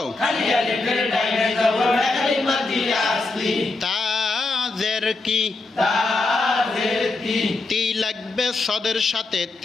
তা জের কি, তি লাগবে সদের সাথে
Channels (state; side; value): quieter; right; 3.4 dB